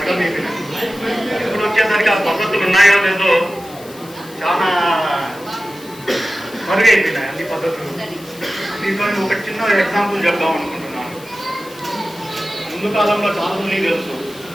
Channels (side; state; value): left; noise; hiss, 20 dB below the sound